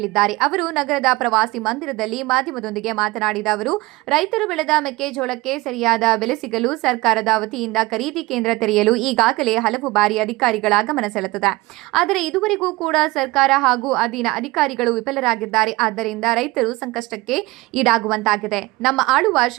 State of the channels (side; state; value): left; quieter; 21.4 dB